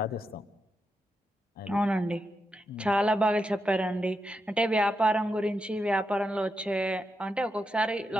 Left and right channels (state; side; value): normal; both; correlation 0.86